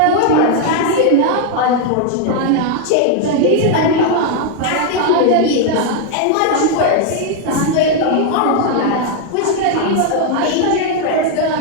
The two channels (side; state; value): both; different; correlation 0.00